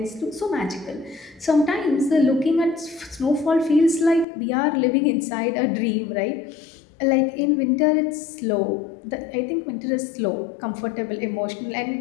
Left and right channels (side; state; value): right; drops out; at 4.2 s